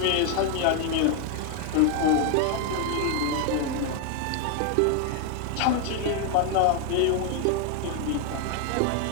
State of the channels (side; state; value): both; different; correlation 0.01